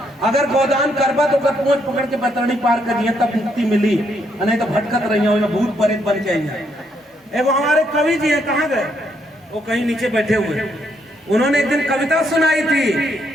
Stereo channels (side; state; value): both; normal; correlation 0.74